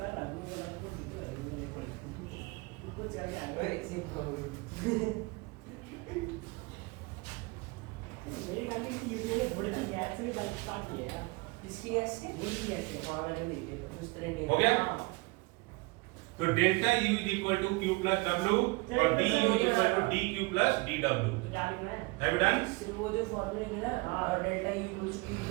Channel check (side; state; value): left; quieter; 26.4 dB